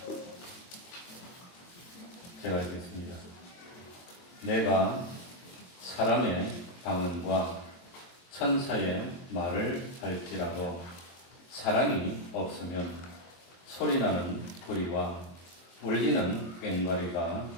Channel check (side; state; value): right; late; 23 ms